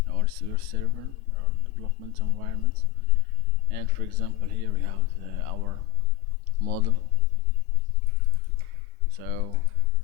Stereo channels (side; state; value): right; quieter; 16.5 dB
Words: or your server or development environment. And for example, here we have our model. So